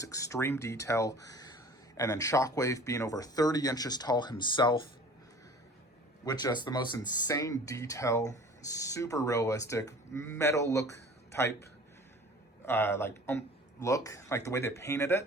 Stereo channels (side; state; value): both; normal; correlation 0.45